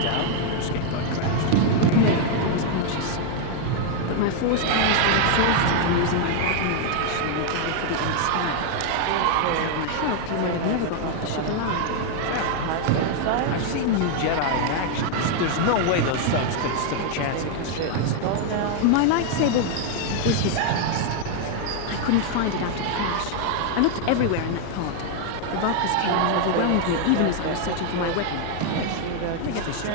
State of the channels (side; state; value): both; different; correlation 0.00